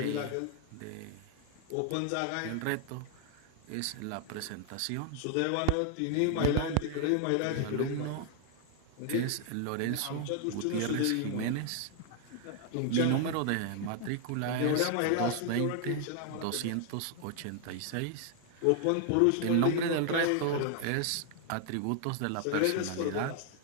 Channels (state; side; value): different; both; correlation 0.00